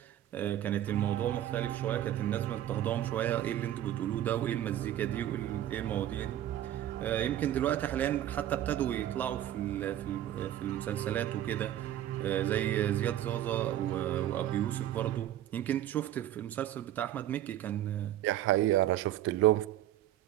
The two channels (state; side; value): quieter; left; 12.4 dB